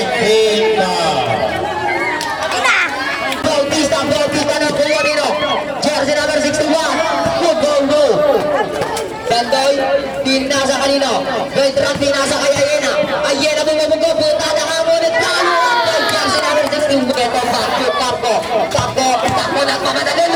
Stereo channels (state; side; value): identical; both; correlation 1.00